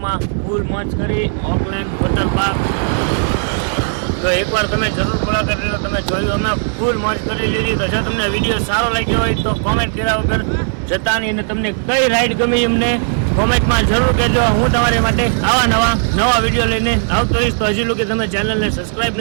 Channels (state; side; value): silent; left; digital silence